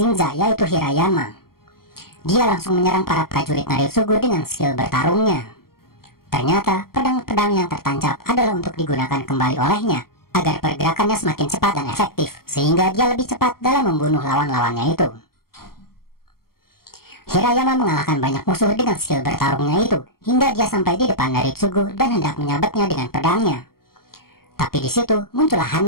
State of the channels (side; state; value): right; late; 0.93 ms